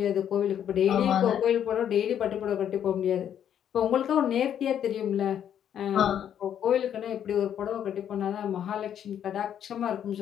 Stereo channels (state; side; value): quieter; right; 9.6 dB